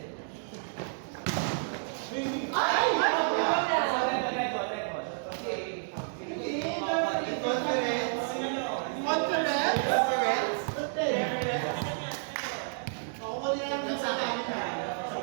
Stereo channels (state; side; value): silent; left; digital silence